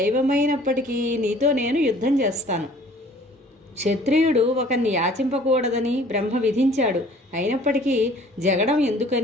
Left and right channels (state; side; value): normal; both; correlation 0.52